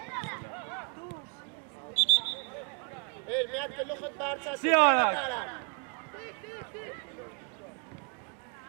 Էլ մի հատ գլուխդ բարձրացու, Սի արա։ տարան։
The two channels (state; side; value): quieter; left; 38.3 dB